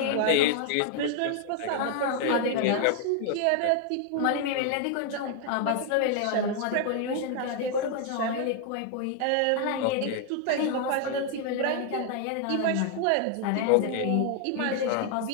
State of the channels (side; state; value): both; different; correlation 0.00